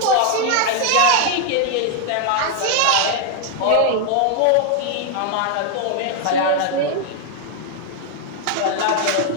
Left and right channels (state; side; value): different; both; correlation 0.00